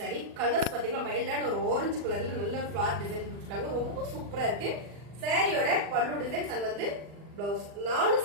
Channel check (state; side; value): late; left; 40 ms